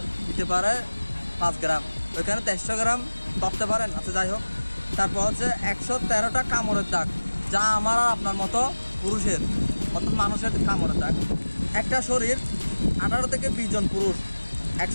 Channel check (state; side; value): inverted; both; correlation -1.00